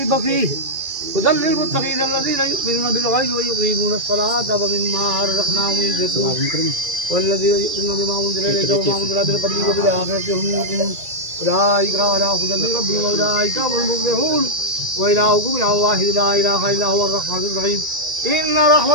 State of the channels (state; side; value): late; left; 2.3 ms